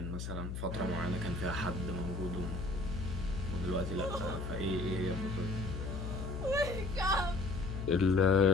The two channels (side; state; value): left; noise; hum, 5 dB below the sound